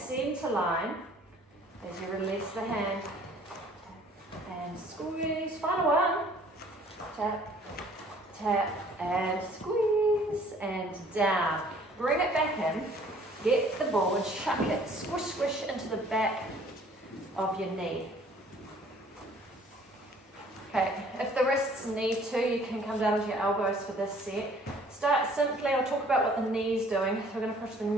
line as you release the hand. And squeeze. Final one. Tap, tap, and squeeze. And down. Bring it back in. Get the ball and chuck it. Squish, squish into the back of your knee. Okay, if the wrists need to, you can come down with your elbows for this set. Start simply, I'll talk about what the knee's doing. So we're going to push the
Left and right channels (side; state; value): both; normal; correlation 0.56